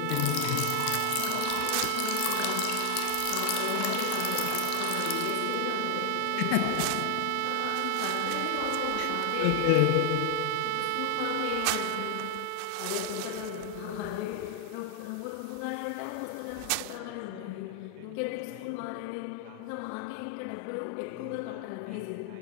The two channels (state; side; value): different; both; correlation 0.00